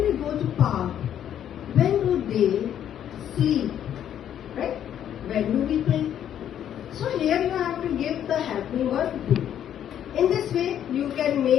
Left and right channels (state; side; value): quieter; right; 10.1 dB